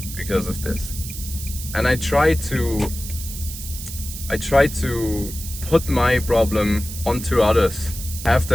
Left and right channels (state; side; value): noise; right; hiss, 10 dB below the sound